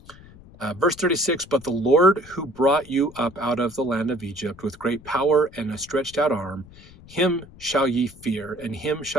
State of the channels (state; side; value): noise; left; rumble, 21 dB below the sound